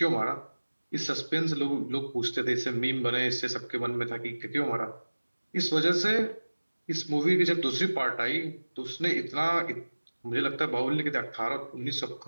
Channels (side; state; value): both; inverted; correlation -1.00